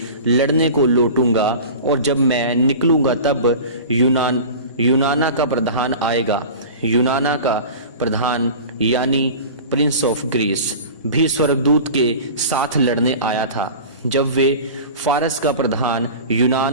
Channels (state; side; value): inverted; both; correlation -0.36